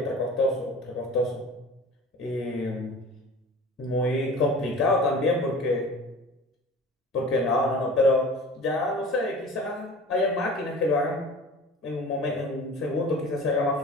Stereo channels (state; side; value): normal; both; correlation 0.40